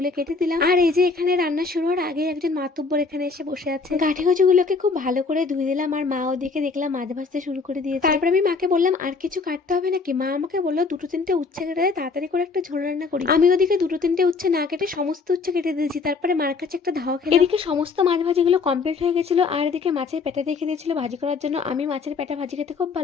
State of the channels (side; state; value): right; quieter; 4.5 dB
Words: কেটে দিলাম। আর এই যে এখানে রান্না শুরু হওয়ার আগে একজন মাতুব্বর এখানে এসে বসে আছে। গাঁঠি কচুগুলোকে খুব ভালো করে ধুয়ে দিলাম আর মা ওদিকে দেখলাম মাছ ভাজতে শুরু করে দিয়েছে। তারপরে আমি মাকে বললাম আর কিছু কাটতে হবে নাকি। মা আমাকে বললো দুটো তিনটে উচ্ছে কেটে দেয়, তাড়াতাড়ি করে একটা ঝোল রান্না করি। আমি ওদিকে দুটো তিনটে উচ্ছে না কেটে সমস্ত উচ্ছে কেটে দিয়েছি। তারপরে মার কাছে একটা ধাওয়া খেলাম। এদিকে সমস্ত মাছ ভাজিগুলো কমপ্লিট হয়ে গেছিল আর এদিকে মাছের পেটা রেখে দিয়েছিল ভাজি করার জন্য। আমি মাছের পেটা ভাজি খেতে খুব